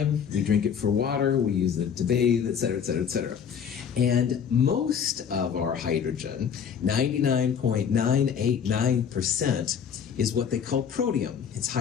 We drink it for water, we use it to bathe, et cetera, et cetera, et cetera. And most of our hydrogen, 99.989%, is what they call protium. It's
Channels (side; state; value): right; quieter; 7.5 dB